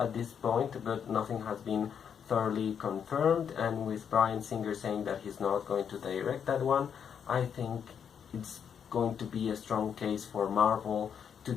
this point, but nothing has been thoroughly confirmed, and with Bryan Singer saying that he's not going to direct that one, I think it's going to be a strong case for Marvel to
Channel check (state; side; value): quieter; right; 7.7 dB